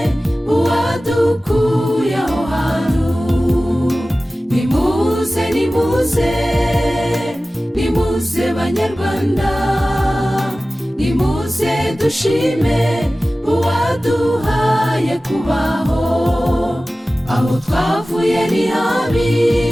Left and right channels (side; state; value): both; normal; correlation 0.96